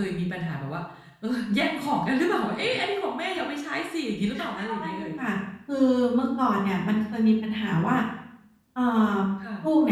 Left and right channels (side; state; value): both; identical; correlation 1.00